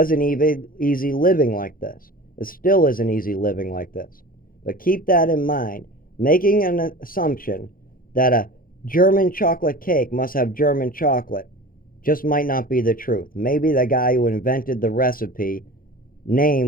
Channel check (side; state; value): right; late; 0.41 ms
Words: even easy living like this. It still isn't easy living like this. But keep that in mind. Making an assumption that a German chocolate cake must have German chocolate just might not be the truth. Maybe the guy who invented the recipe